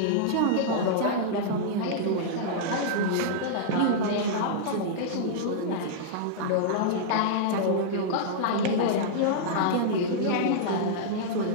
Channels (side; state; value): both; different; correlation -0.02